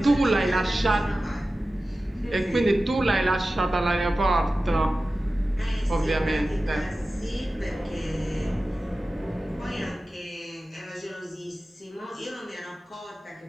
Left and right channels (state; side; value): normal; both; correlation 0.95